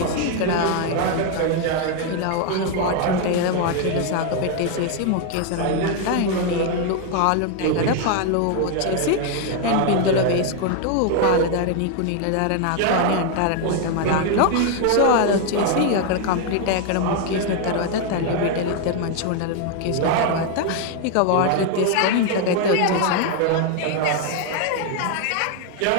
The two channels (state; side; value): different; both; correlation 0.01